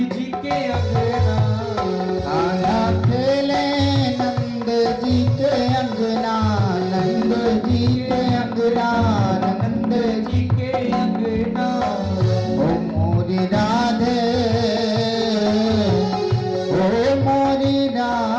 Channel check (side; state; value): both; identical; correlation 1.00